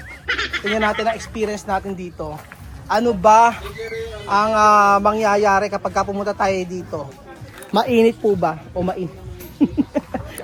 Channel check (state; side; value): identical; both; correlation 1.00